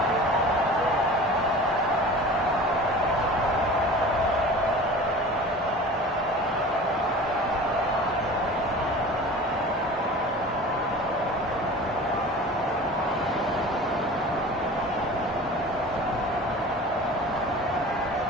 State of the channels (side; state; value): both; normal; correlation 0.38